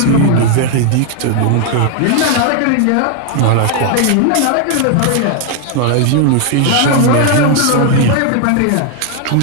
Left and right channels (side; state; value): both; different; correlation 0.00